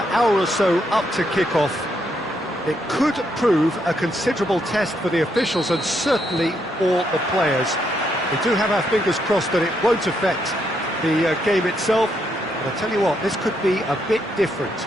hour or so up to kick-off. It could prove a considerable test for the officials and certainly for the players. We do have our fingers crossed that it won't affect the game itself, but I'll tell you what, this could be a bit different.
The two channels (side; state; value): both; normal; correlation 0.77